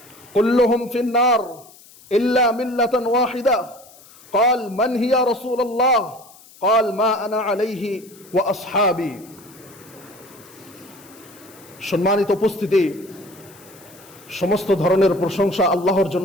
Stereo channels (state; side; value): noise; left; hiss, 23 dB below the sound